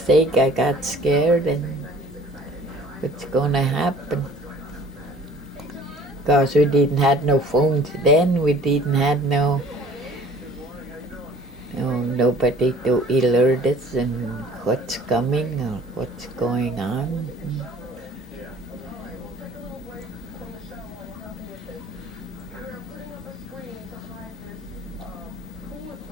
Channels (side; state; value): both; normal; correlation 0.50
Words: thing I got scared, and what's gonna happen? Because we didn't have no phones then, we didn't have nobody to alert us and what's coming or what's going on.